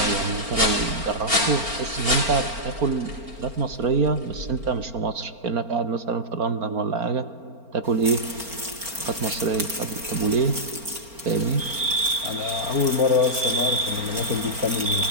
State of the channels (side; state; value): left; late; 4.4 ms